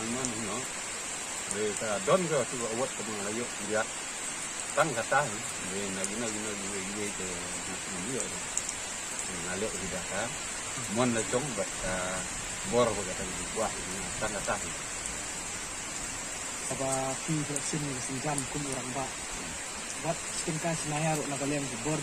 namanya no mereka don ke tu awat ke mengayu lihat tang kata ni lagi ke dia ngalek tidak kan mon la jong bat bor ko kata buah tang kata apa vaksin senjam kum orang ba buat stingka senayar nak kalian bor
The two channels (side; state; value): both; identical; correlation 1.00